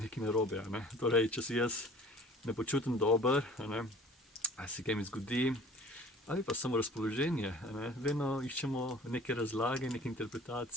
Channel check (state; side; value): normal; both; correlation 0.48